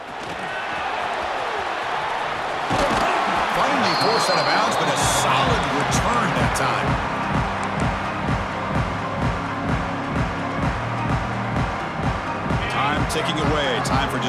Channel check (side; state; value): both; identical; correlation 1.00